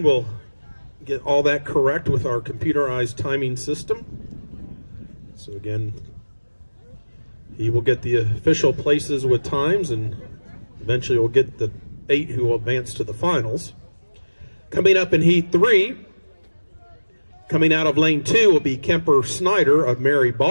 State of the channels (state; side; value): inverted; both; correlation -1.00